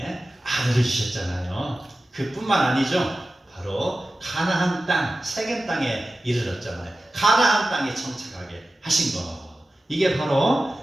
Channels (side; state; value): both; normal; correlation 0.95